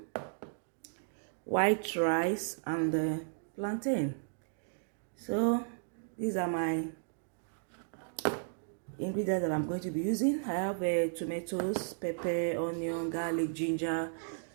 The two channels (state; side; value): silent; left; digital silence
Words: white rice, and plantain. So these are my ingredients that I'm going to be using. I have tomatoes, pepper, onion, garlic, ginger,